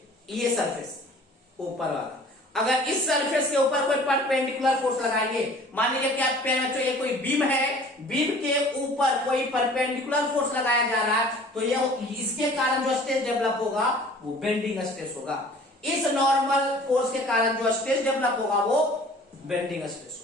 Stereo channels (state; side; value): normal; both; correlation 0.48